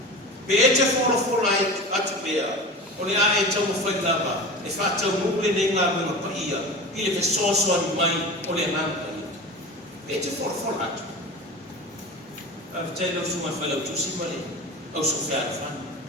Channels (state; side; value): normal; both; correlation 0.32